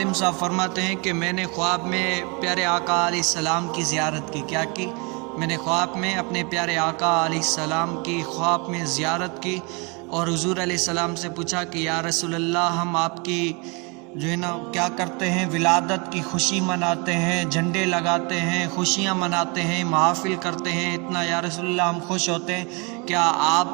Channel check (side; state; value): left; quieter; 31.0 dB